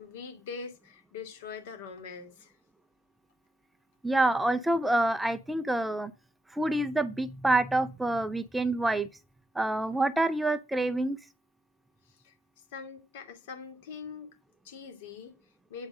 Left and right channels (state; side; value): normal; both; correlation 0.86